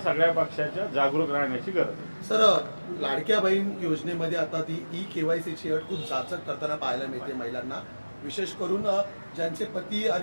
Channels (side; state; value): both; inverted; correlation -1.00